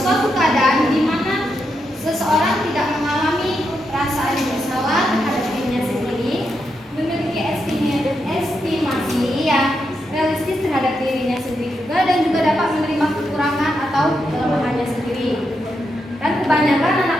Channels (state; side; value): normal; both; correlation 0.83